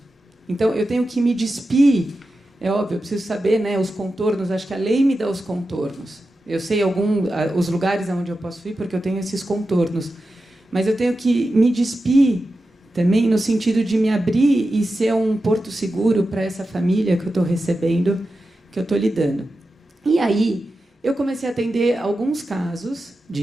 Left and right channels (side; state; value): both; normal; correlation 0.91